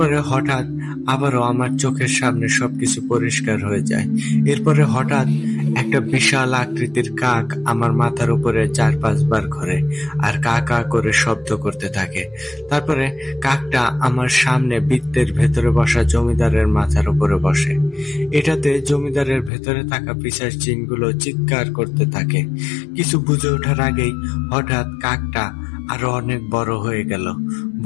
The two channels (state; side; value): drops out; right; at 19.5 s